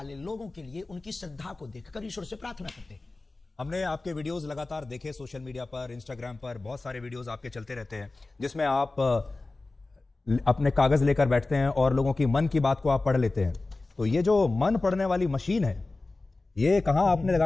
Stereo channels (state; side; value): quieter; right; 3.3 dB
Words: लोगों के लिए उनकी श्रद्धा को देखकर ईश्वर से प्रार्थना करते। हमने आपके वीडियोस लगातार देखे, सोशल मीडिया पर, इंस्टाग्राम पर बहुत सारे वीडियोस आपके चलते रहते हैं, जिसमें आप अपने कागज लेकर बैठते हैं और लोगों की मन की बात को आप पढ़ लेते हैं। तो ये जो मन पढ़ने वाली मशीन है, ये कहां आपने